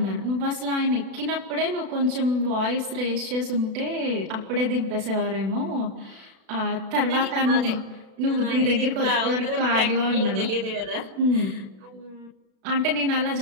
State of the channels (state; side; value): late; left; 36 ms